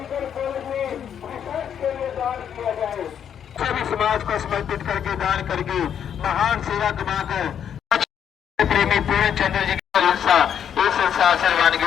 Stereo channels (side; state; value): right; quieter; 8.7 dB